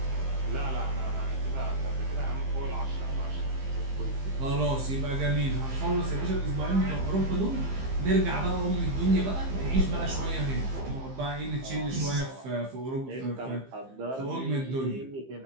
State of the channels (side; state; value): left; late; 15 ms